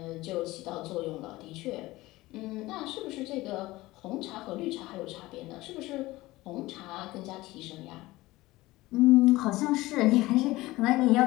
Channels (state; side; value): quieter; right; 19.0 dB